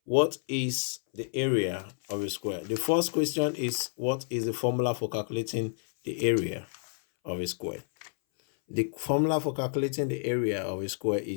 What is the area of a square? The first question is, what is the formula for calculating the area of a square? The formula for calculating the area of a square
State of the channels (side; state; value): right; silent; 58 dB below the other